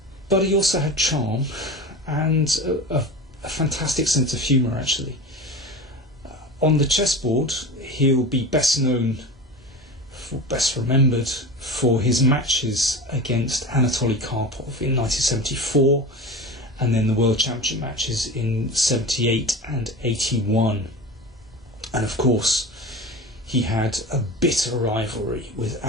But he also had charm and a fantastic sense of humour, actually. On the chessboard, he'll be best remembered for his matches against Anatoly Karpov in 1974, and then the World Championship matches in 78 and 81. And of course, he had a bitter rivalry with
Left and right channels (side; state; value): both; normal; correlation 0.30